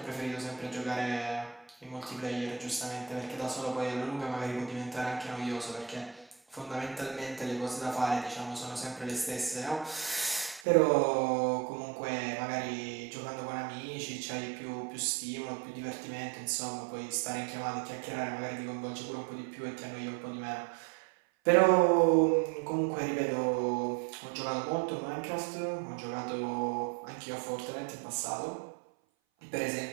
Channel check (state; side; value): drops out; left; at 10.7 s